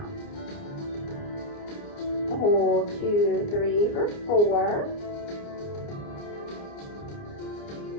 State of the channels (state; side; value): late; right; 29 ms